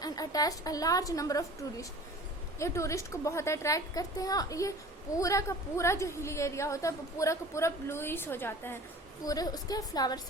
attach a large number of tourist. ये टूरिस्ट को बहुत अट्रैक्ट करते हैं, और ये पूरा का पूरा जो हिली एरिया होता है वो पूरा का पूरा ब्लूइश हो जाता है पूरे उसके फ्लावर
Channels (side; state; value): both; normal; correlation 0.43